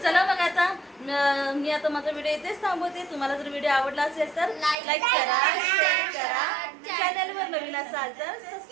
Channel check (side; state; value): left; drops out; at 4.8 s